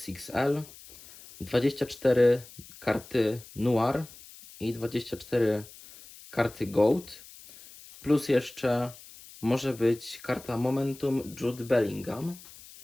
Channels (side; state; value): left; noise; hiss, 19 dB below the sound